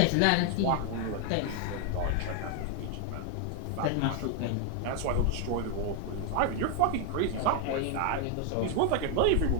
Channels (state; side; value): different; both; correlation 0.00